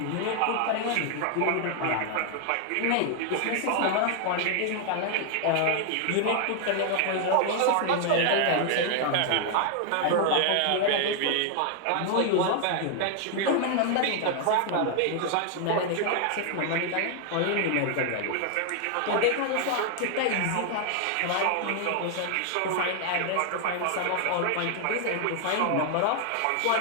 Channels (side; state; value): both; different; correlation 0.00